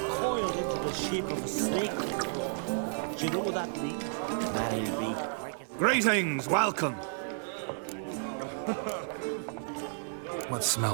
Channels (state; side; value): silent; left; digital silence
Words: coiled into the shape of a snake. Do you know what that means? That'll be. Greetings, welcome. What